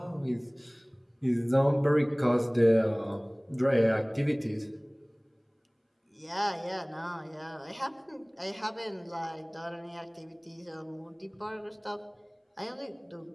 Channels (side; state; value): both; identical; correlation 1.00